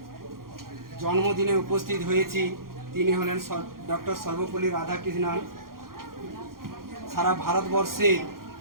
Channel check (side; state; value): left; late; 0.92 ms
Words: জন্মদিনে উপস্থিত হয়েছি তিনি হলেন ডক্টর সর্বপল্লী রাধাকৃষ্ণন। সারা ভারতবর্ষের